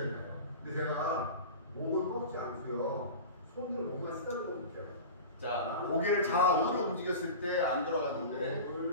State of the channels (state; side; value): inverted; both; correlation -0.33